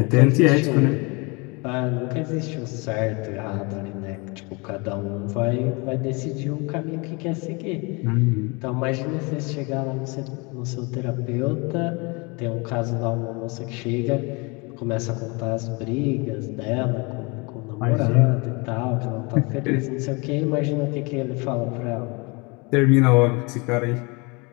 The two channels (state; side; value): quieter; right; 28.6 dB